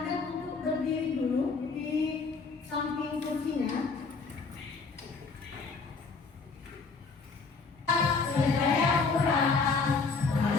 untuk berdiri dulu di samping kursinya.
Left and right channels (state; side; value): quieter; right; 4.5 dB